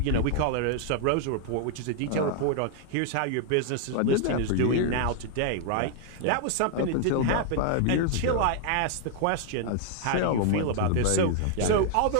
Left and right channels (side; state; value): both; different; correlation 0.00